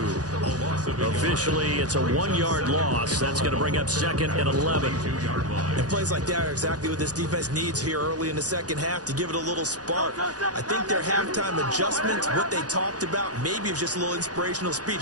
Officially, it's a 1-yard loss. That's going to bring up second and 11. And plays like that are exactly what this defense needs here early in the second half to give it a little spark. I think their halftime adjustments, what they talked about, maybe it was just a little inspirational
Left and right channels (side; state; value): left; late; 0.68 ms